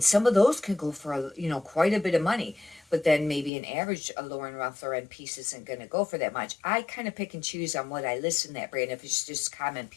some of those can go for, you know, quite a bit of money. But then maybe an average Lauren Ralph Lauren piece isn't going to go for that much. I kind of pick and choose on what I list in that brand. If it's just common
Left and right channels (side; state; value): right; drops out; at 3.5 s